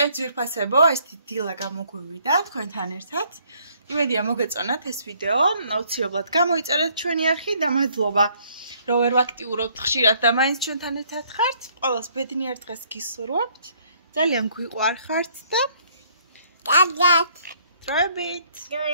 ძვირფასებო, ეს დილა გამოგვივიდა თქვენთან ერთად. იმედია მოგეწონათ ეს ვიდეო, აუცილებლად გამოიწერეთ ჩვენი არხი და მადლობა რომ ვერ ვაქტიურობთ ხშირად და მაინც ჩვენთან ერთად ხართ. ყველას ბედნიერ დღეს გისურვებთ. ძალიან გვიყვარხართ და კარგად. დროებით.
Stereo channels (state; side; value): inverted; both; correlation -0.64